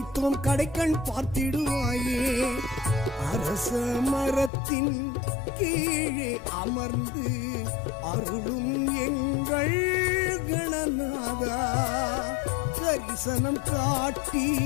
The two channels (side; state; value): right; drops out; at 4.5 s